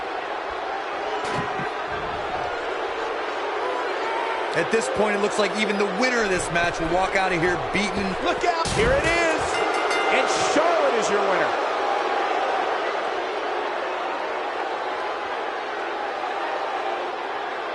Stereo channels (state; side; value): identical; both; correlation 1.00